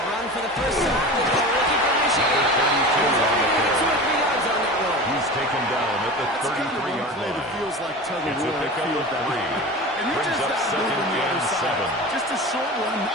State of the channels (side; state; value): both; normal; correlation 0.32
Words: For the first time, they're looking for Michigan. 32 on the play. 2 or 3 yards on that one. He's taken down at the 33-yard line. It feels like tug of It's a war. pickup of 3. And you're Brings just up not second moving the and other side. 7. Just a short one.